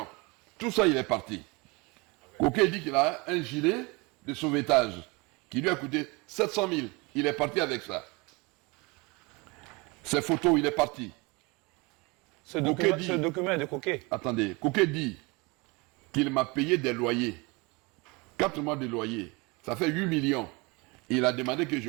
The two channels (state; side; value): quieter; left; 26.7 dB